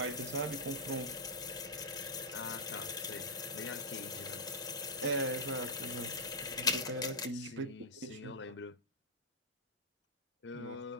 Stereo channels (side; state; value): both; normal; correlation -0.10